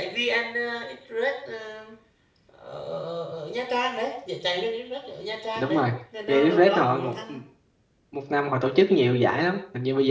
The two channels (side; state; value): both; identical; correlation 1.00